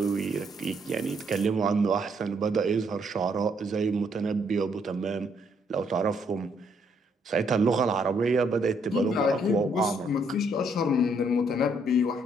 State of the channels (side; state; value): both; normal; correlation 0.71